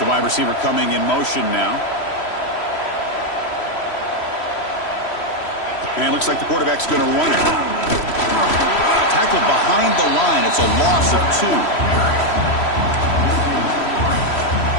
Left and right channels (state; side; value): late; right; 3.0 ms